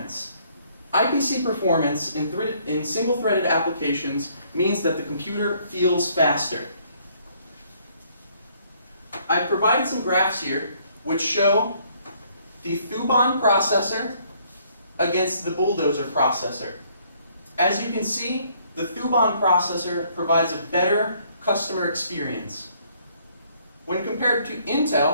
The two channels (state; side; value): inverted; both; correlation -0.65